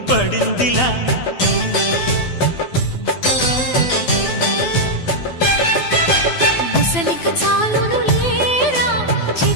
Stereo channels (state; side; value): late; right; 12 ms